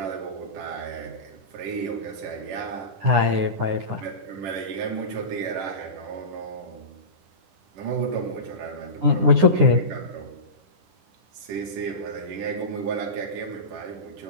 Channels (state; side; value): late; left; 9.8 ms